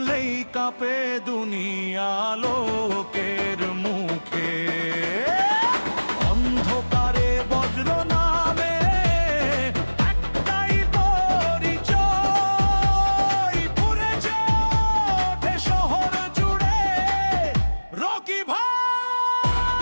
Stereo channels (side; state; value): both; inverted; correlation -1.00